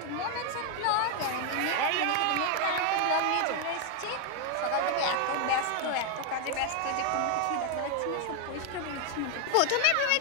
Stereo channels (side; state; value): both; different; correlation 0.00